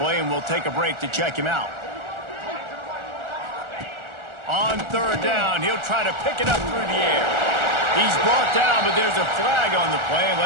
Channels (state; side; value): late; left; 1.4 ms